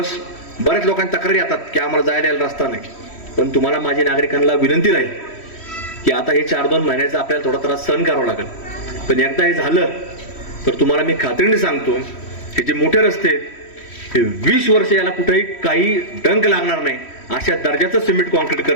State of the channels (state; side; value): late; right; 3.1 ms